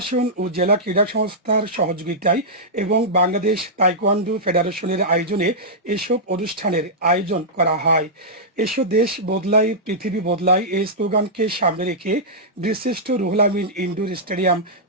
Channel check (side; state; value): both; normal; correlation -0.11